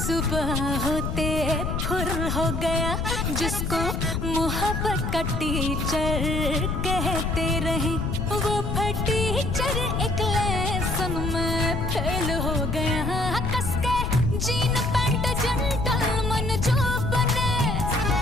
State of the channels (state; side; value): noise; left; rumble, 1 dB below the sound